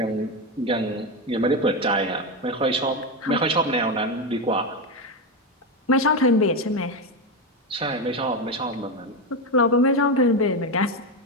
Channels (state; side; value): normal; both; correlation 0.12